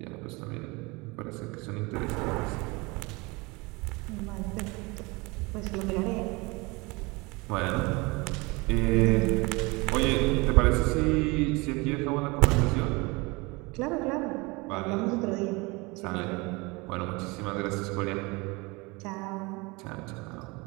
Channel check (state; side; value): quieter; left; 25.6 dB